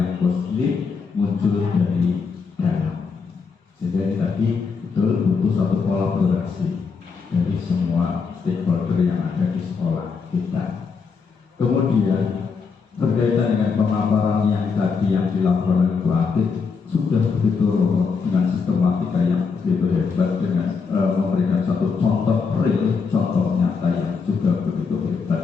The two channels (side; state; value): right; quieter; 5.3 dB